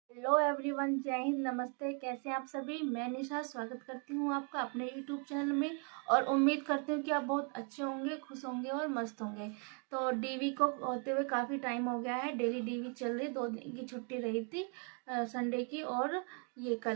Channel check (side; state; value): left; quieter; 37.2 dB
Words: Hello everyone, जय हिंद, नमस्ते। कैसे हैं आप सभी। मैं निशा स्वागत करती हूँ आपका अपने यूट्यूब चैनल में और उम्मीद करती हूँ कि आप बहुत अच्छे होंगे, खुश होंगे और मस्त होंगे। तो डीवी को होते हुए काफ़ी टाइम हो गया है। डेली डीवी चल रही, 2 दिन की छुट्टी रही थी, संडे की और ये